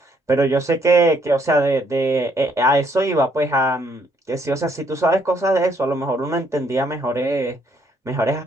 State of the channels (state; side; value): normal; both; correlation 0.69